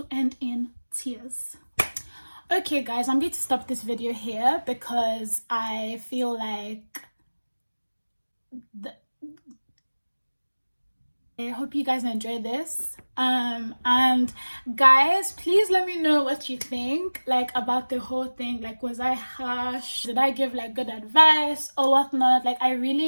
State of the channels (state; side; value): inverted; both; correlation -1.00